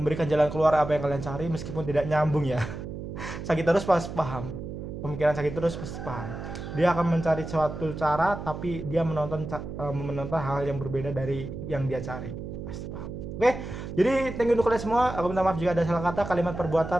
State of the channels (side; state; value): right; noise; hum, 8 dB below the sound